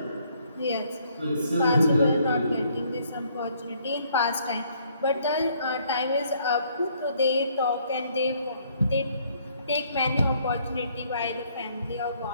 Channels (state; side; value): inverted; both; correlation -0.66